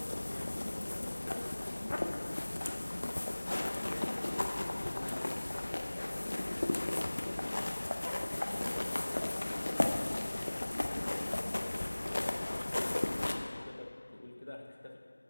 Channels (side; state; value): both; inverted; correlation -1.00